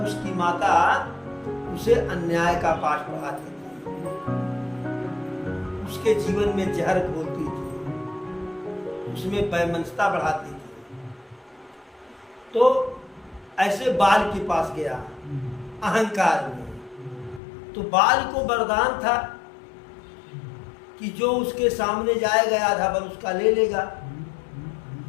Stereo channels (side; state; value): right; drops out; at 17.4 s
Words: उसकी माता उसे अन्याय का पाठ पढ़ाती थी, उसके जीवन में जहर घोलती थी, उसमें वैमनस्यता बढ़ाती थी। तो ऐसे बाल के पास गया अहंकार में, तो बाल को वरदान था कि जो उसके सामने जाएगा आधा बल उसका ले लेगा।